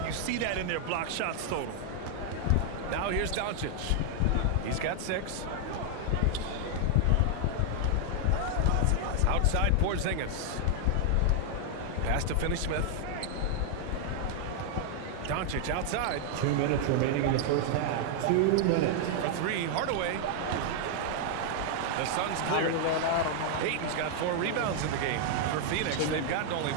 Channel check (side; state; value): both; different; correlation 0.00